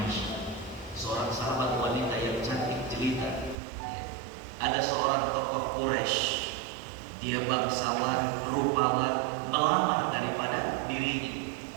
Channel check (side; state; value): left; drops out; at 3.6 s